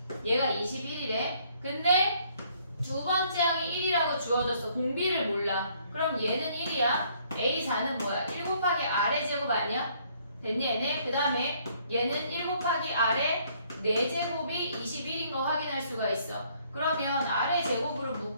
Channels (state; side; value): inverted; both; correlation -0.65